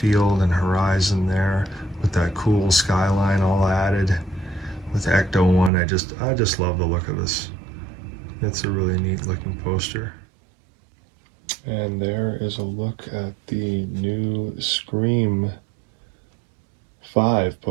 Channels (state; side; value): drops out; left; at 5.7 s